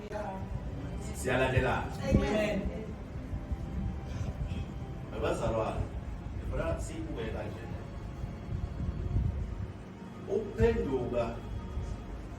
Siyalandela. Amen. Abazalwane, ngifuna sibuke kanje. Ukuphenduka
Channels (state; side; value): identical; both; correlation 1.00